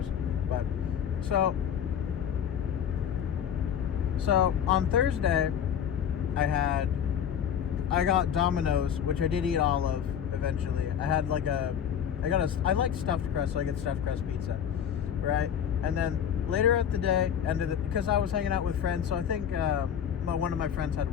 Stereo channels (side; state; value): right; quieter; 8.8 dB